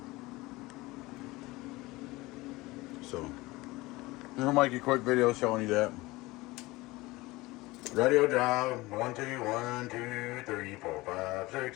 So, I'm going to make a quick video showing you that. Radio drive, 1, 2, 1, 2, 3, 4, 5, 6,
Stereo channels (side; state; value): right; quieter; 20.8 dB